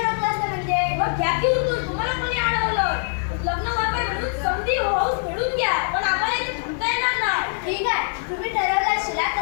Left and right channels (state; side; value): silent; right; digital silence